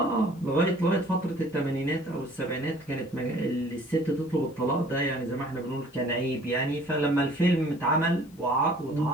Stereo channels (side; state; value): left; noise; hiss, 29 dB below the sound